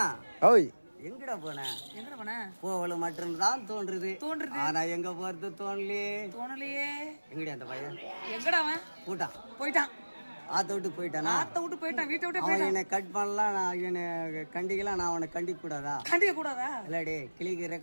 ஓய் எங்கடா போன? எங்கடா போன? போவல மட்டும் தான் தோன்றுது. ஆனா எங்க போறது தோணலையே. எங்கடா அந்த பையன்? எங்கடா அவன்? போயிட்டான். ஆத்த விட்டு போயிட்டானா? ஆத்த விட்டு போயிட்டான். வீட்டை விட்டு அவன் போயிட்டான். என்னை கட் பண்ணலாம், நான் என்னை கண்டிக்கலாம், நான் அவனை கண்டிக்க கூடாதா? கண்டிக்க கூடாதா? இல்லாடி கிளிக்கு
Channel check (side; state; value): both; inverted; correlation -1.00